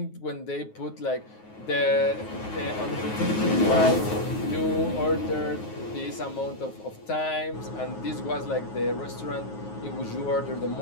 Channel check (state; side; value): late; right; 9.4 ms